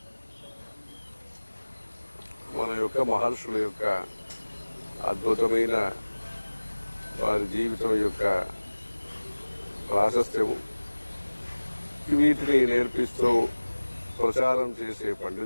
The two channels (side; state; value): both; inverted; correlation -1.00